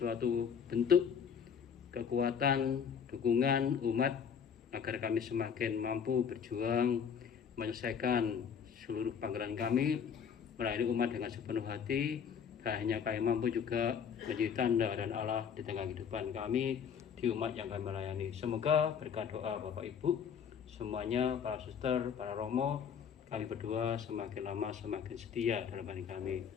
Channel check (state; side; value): quieter; right; 7.3 dB